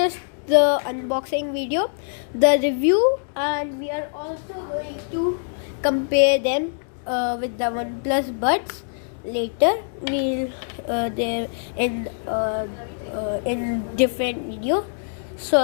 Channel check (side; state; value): right; silent; digital silence